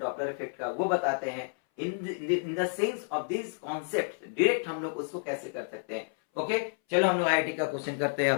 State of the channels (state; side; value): silent; right; 58 dB below the other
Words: इफेक्ट का वो बताते हैं, in the sense of this concept direct हम लोग उसको कैसे कर सकते हैं। ओके, चलो हम लोग आईआईटी का क्वेश्चन करते हैं।